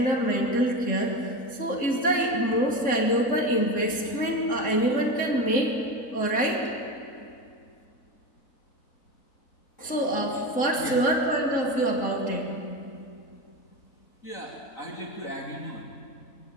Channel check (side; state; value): right; late; 3.7 ms